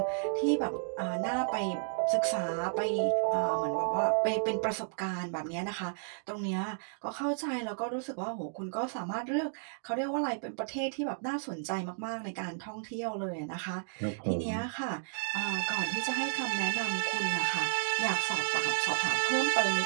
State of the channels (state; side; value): silent; left; digital silence